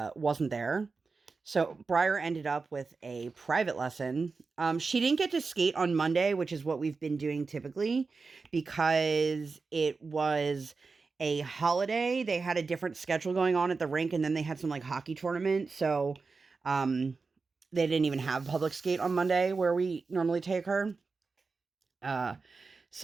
there. So Briar ended up with a private lesson. She didn't get to skate on Monday, which is what we've been doing typically, because it was a holiday. They had a different schedule going on at the rink, and then they had some like hockey tournament. So they didn't even have public skate on Monday where we normally take her.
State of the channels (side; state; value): left; quieter; 4.4 dB